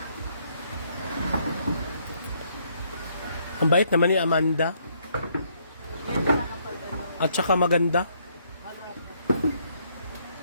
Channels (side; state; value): both; inverted; correlation -0.70